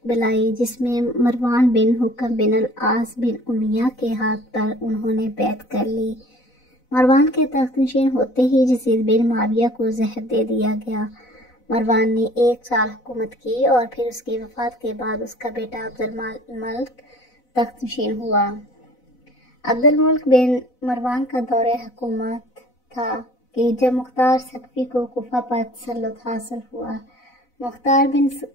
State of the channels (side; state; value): right; late; 4.0 ms